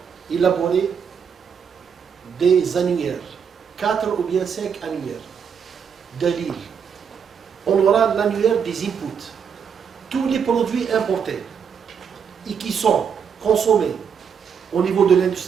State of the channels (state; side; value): quieter; left; 7.0 dB